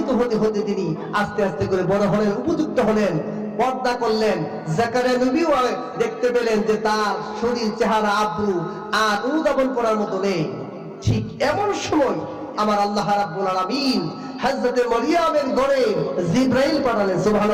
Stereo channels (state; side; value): identical; both; correlation 1.00